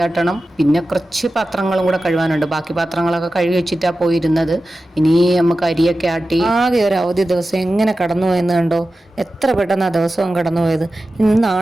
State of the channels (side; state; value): both; normal; correlation 0.94